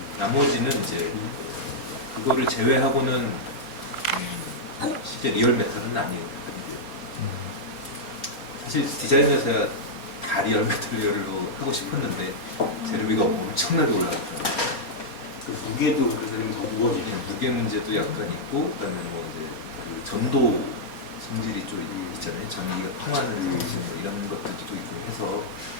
나머지는 이제 그거를 제외하고는 실제 리얼 메탈은 아니고요. 사실 디자인에서야 다 리얼 메탈리얼로 하고 싶었는데 재료비가 엄청나게 올라갔더라고요. 그 무게도 그래서 더 무거워지네. 무게 문제도 약간 있고 그다음에 뭐 이제 그 전도 성질이 좀 있잖아요. 전기가 통하는 성질 뭐 이런 것들도 있고 해서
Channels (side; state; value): right; late; 4.3 ms